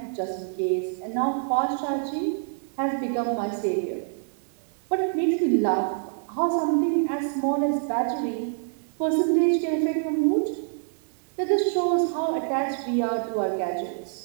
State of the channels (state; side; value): silent; left; digital silence